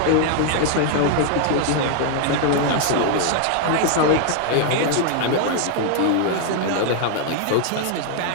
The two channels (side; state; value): both; different; correlation 0.00